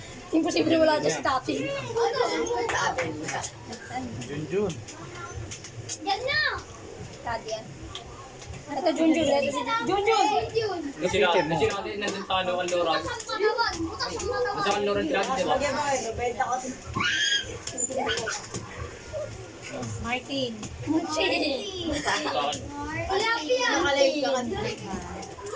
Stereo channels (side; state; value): both; identical; correlation 1.00